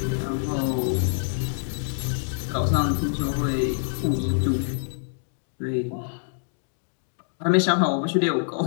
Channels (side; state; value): right; silent; digital silence